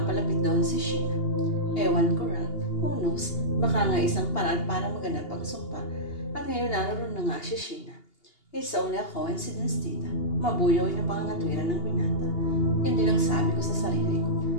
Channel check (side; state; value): right; late; 2.8 ms